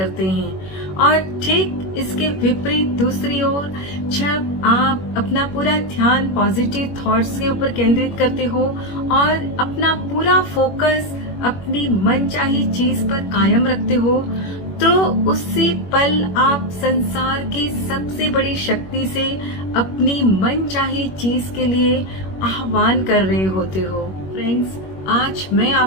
हैं। और ठीक इसके विपरीत दूसरी ओर जब आप अपना पूरा ध्यान पॉजिटिव थॉट्स के ऊपर केंद्रित करते हो और अपना पूरा फोकस अपनी मनचाही चीज पर कायम रखते हो तो उसी पल आप संसार की सबसे बड़ी शक्ति से अपनी मनचाही चीज के लिए आह्वान कर रहे होते हो। फ्रेंड्स, आज मैं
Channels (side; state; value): right; late; 21 ms